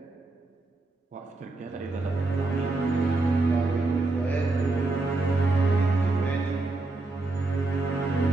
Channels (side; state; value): left; quieter; 3.2 dB